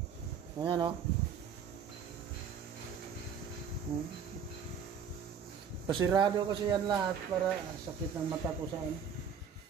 Ayan Pasirado kasi yan lahat para sakit ng mata ko sa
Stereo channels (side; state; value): left; quieter; 7.1 dB